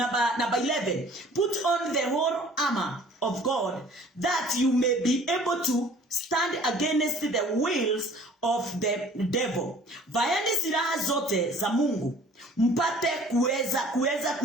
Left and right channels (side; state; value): both; normal; correlation 0.52